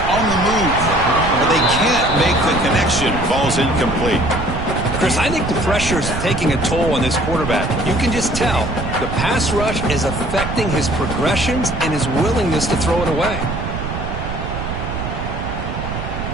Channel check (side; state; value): right; noise; rumble, 5 dB below the sound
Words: on the move, but they can't make the connection. Falls incomplete. Chris, I think the pressure is taking a toll on this quarterback. You can just tell the pass rush is affecting his progressions and his willingness to throw it away.